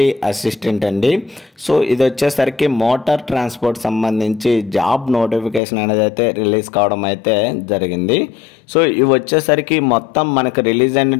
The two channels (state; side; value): drops out; right; at 5.6 s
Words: అసిస్టెంట్ అండి. సో ఇది వచ్చేసరికి మోటార్ ట్రాన్స్పోర్ట్ సంబంధించి జాబ్ నోటిఫికేషన్ అనేది అయితే రిలీజ్ కావడం అయితే జరిగింది. సో ఇవి వచ్చేసరికి మొత్తం మనకు రిలీజ్